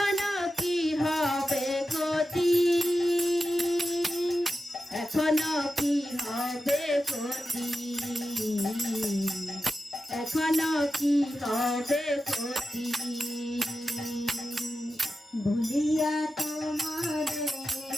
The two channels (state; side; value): normal; both; correlation 0.92